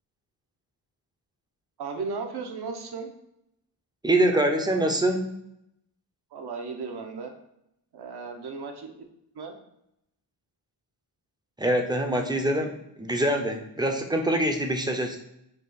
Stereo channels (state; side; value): normal; both; correlation 0.48